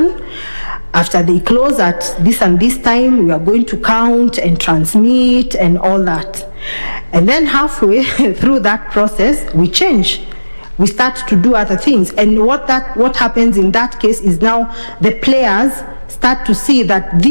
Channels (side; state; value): both; inverted; correlation -1.00